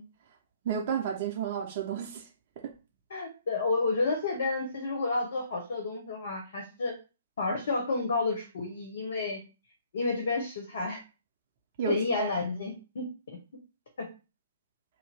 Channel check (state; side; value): inverted; both; correlation -0.62